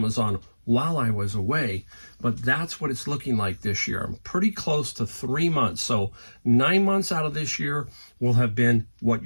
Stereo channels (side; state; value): both; inverted; correlation -1.00